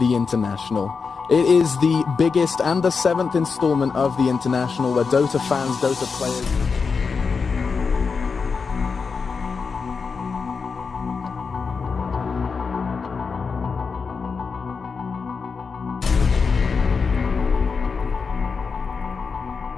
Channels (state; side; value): quieter; right; 5.2 dB